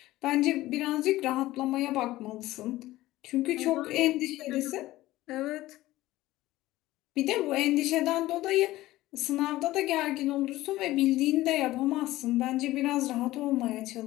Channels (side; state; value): right; quieter; 16.8 dB